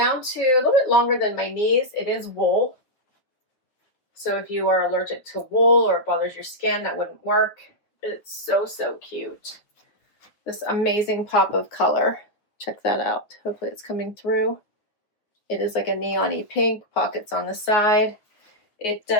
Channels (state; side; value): late; right; 9.4 ms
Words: to a little bit longer than my knees. It is wool. So if you are allergic to wool or it bothers your skin, that wouldn't work. It's so cute. This amazing pop of color. Check that out. Hopefully it's coming through. It is like a neon-y pink, pockets on the side. It